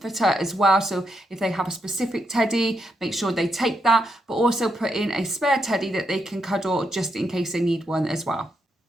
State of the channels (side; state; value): both; normal; correlation 0.81